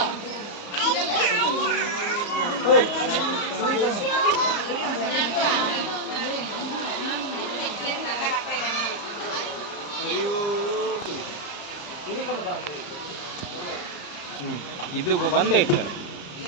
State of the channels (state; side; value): late; right; 34 ms